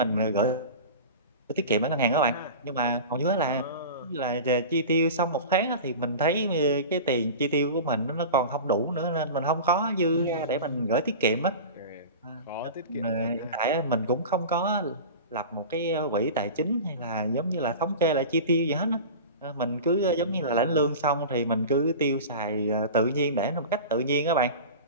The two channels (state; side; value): inverted; both; correlation -0.32